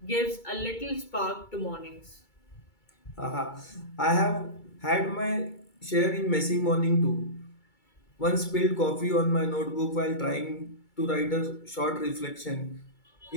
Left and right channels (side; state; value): right; late; 2.2 ms